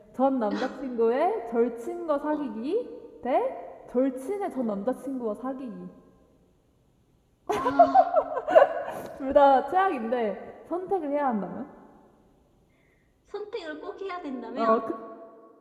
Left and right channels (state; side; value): identical; both; correlation 1.00